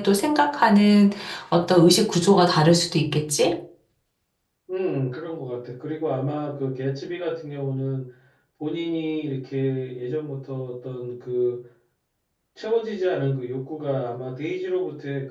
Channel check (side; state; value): both; identical; correlation 1.00